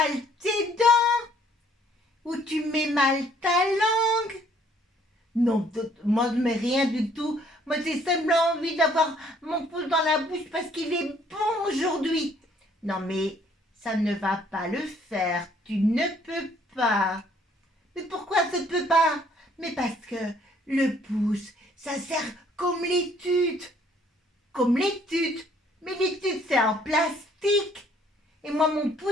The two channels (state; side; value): normal; both; correlation 0.62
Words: tes dents. Ou tu mets mal ta langue. Non, moi je mets rien du tout. Moi j'ai simplement envie d'avoir mon pouce dans la bouche parce qu'il est bon aujourd'hui. Non mais ça ne va pas le faire. Tu ne peux pas. Mais pourquoi ça ne peut pas? Mais parce que le pouce, ça sert comme l'étude. Comme l'étude. Mais l'étude c'est en plastique. Et moi mon